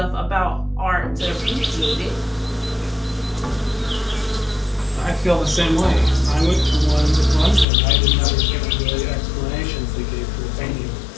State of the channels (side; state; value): right; drops out; at 7.7 s